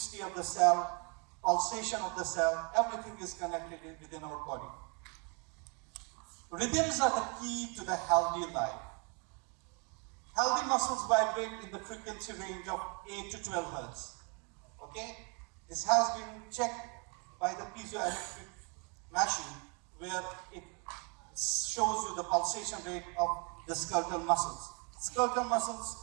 of the cell, pulsation of the cell, everything is connected within our body. Rhythms are the key to the healthy life. Healthy muscles vibrate in the frequency range of 8 to 12 hertz. Okay? This has been checked by the piezoelectric machine, where it shows you the pulsation rate of the skeletal muscles. Skeletal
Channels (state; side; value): quieter; left; 34.5 dB